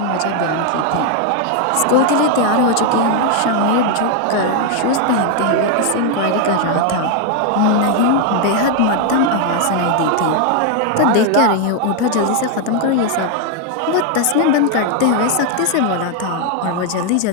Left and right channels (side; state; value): both; different; correlation 0.00